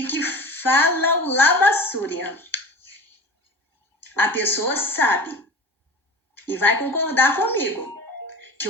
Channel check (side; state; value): both; normal; correlation 0.35